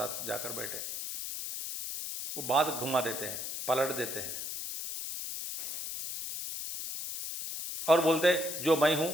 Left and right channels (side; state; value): left; noise; hiss, 6 dB below the sound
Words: जाकर बैठे, वो बात घुमा देते हैं, पलट देते हैं, और बोलते जो मैं हूं